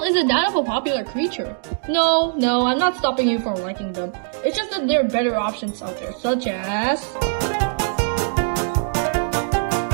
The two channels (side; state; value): left; silent; digital silence